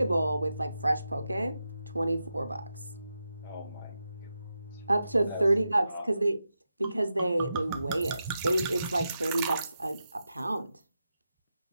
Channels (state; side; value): inverted; both; correlation -0.88